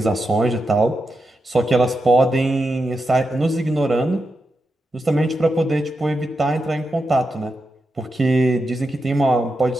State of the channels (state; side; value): normal; both; correlation 0.87